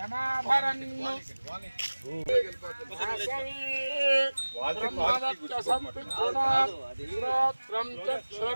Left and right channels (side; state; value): both; inverted; correlation -1.00